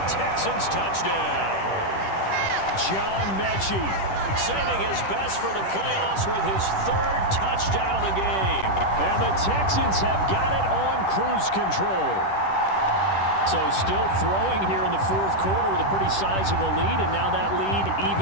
Texans touchdown. John Mechie saving his best for the playoffs with his third touchdown of the game. And the Texans have got it on cruise control. So still throwing here in the fourth quarter with a pretty sizable lead, and now that lead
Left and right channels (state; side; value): late; right; 10 ms